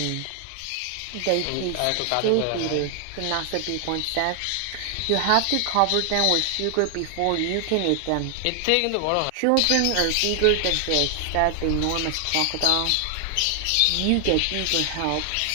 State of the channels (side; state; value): both; different; correlation 0.00